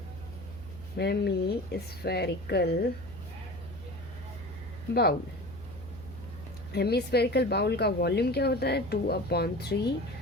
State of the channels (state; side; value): noise; left; hum, 18 dB below the sound